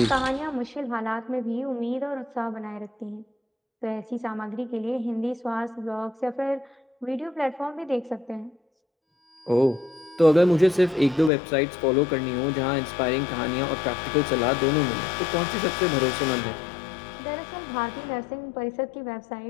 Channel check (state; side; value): drops out; right; at 11.3 s